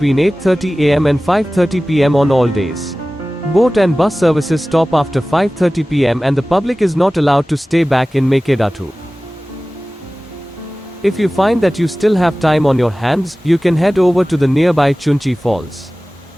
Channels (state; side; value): normal; both; correlation 0.97